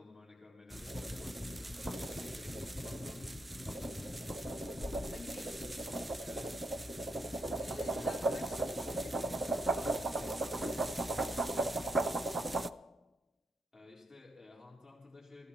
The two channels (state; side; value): normal; both; correlation 0.81